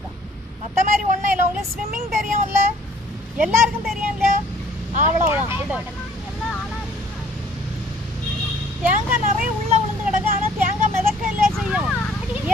மற்ற மாதிரி ஒன்றும் இல்லை. உங்களுக்கு ஸ்விம்மிங் தெரியும்ல, எல்லாருக்கும் தெரியும் இல்லையா? அவ்வளோதான். இது தேங்காய் நிறைய உள்ள விழுந்து கிடக்கு, ஆனால் தேங்காய் மிதக்க இல்லை செய்யும்.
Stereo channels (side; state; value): both; normal; correlation 0.57